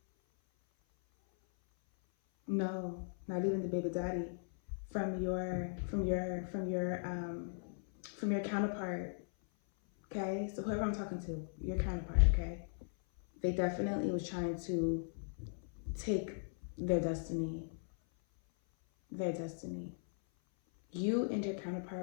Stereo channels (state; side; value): silent; right; 52 dB below the other